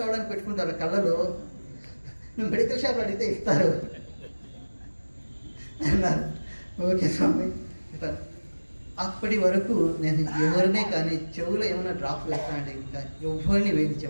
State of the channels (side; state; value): both; inverted; correlation -1.00